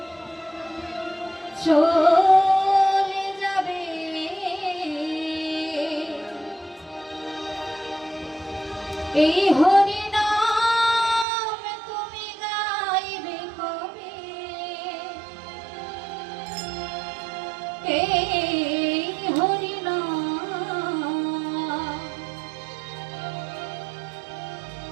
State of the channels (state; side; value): drops out; left; at 11.2 s